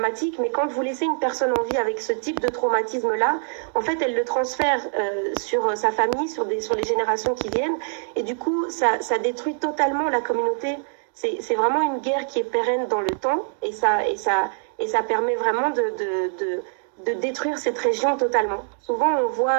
mais quand vous laissez une personne en vie avec ce type de traumatisme là, en fait elle le transfère sur sa famille, sur les générations qui viennent, et du coup ça détruit totalement la communauté. C'est vraiment une guerre qui est pérenne dans le temps, et et ça permet vraiment de détruire cette région totalement. Souvent,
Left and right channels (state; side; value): silent; left; digital silence